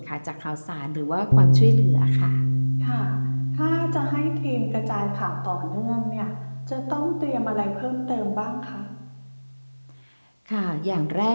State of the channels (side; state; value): both; inverted; correlation -1.00